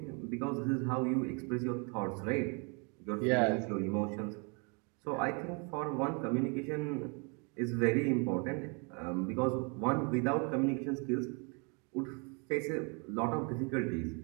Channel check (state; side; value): quieter; left; 34.6 dB